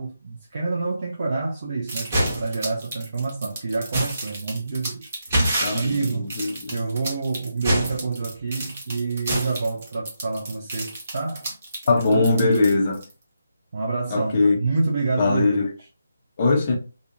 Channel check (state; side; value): inverted; both; correlation -0.82